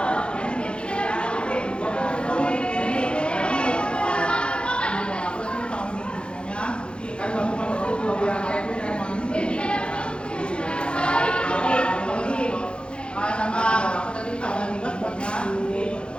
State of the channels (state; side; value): late; right; 0.055 ms